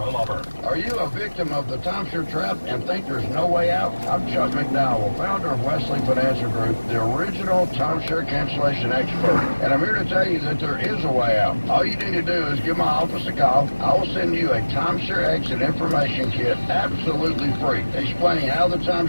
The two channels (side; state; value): both; inverted; correlation -1.00